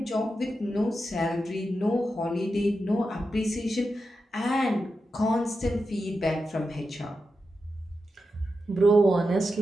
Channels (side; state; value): both; normal; correlation 0.89